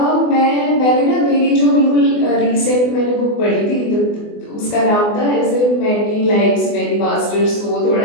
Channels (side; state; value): right; late; 24 ms